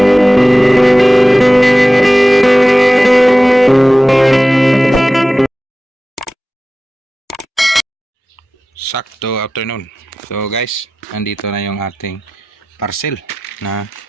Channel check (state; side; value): normal; both; correlation 0.95